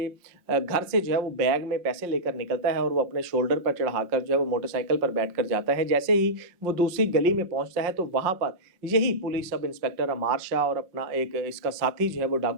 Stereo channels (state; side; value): late; left; 5.5 ms